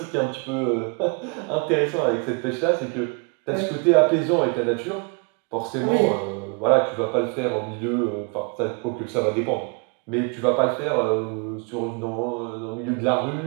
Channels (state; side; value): quieter; left; 35.5 dB